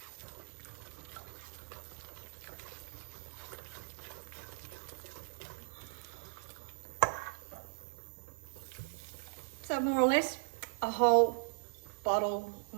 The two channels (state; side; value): silent; left; 52 dB below the other